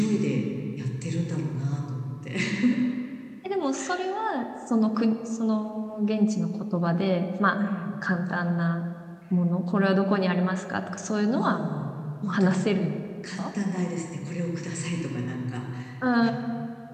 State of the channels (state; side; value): identical; both; correlation 1.00